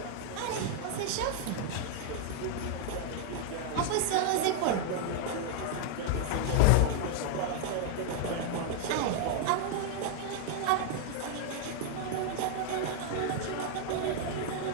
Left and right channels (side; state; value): both; different; correlation 0.00